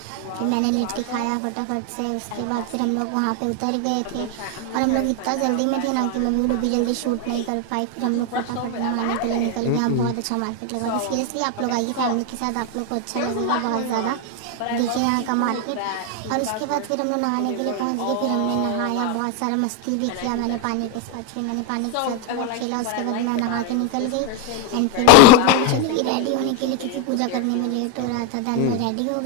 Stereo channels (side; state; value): both; different; correlation 0.01